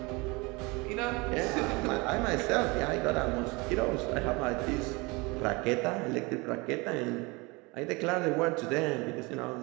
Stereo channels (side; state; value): left; quieter; 25.9 dB